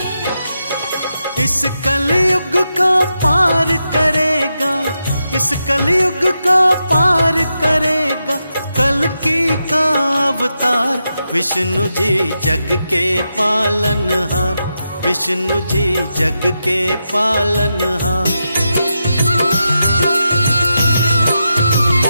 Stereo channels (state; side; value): inverted; both; correlation -0.87